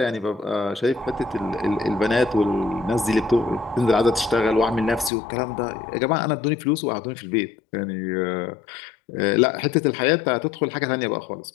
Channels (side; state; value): right; drops out; at 5.1 s